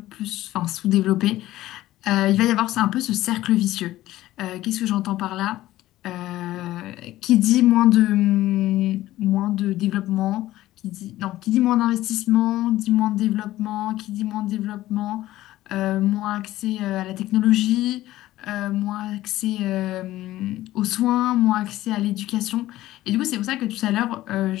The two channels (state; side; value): quieter; right; 15.5 dB